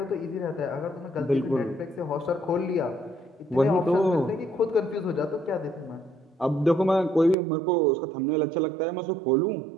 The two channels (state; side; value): drops out; left; at 7.4 s